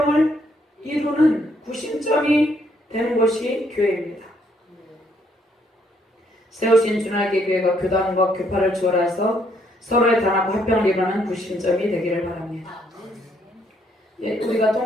이루는 구심점이 되는 것이 교회입니다. 세우신 주날개 교회가 교단과 교파를 초월해서 서로의 단합과 화평을 이루는 구심점이 되기를 바랍니다. 우리가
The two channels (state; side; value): normal; both; correlation 0.70